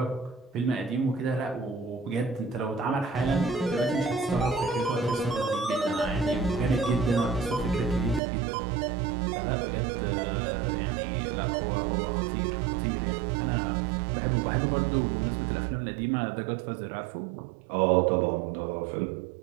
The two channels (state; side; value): drops out; left; at 8.2 s